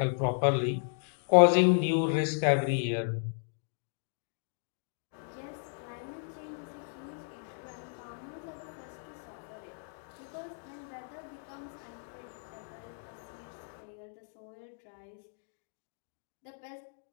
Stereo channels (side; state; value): right; silent; digital silence